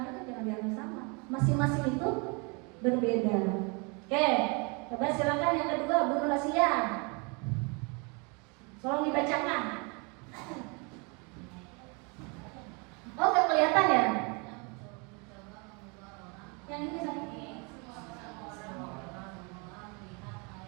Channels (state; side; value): quieter; left; 31.7 dB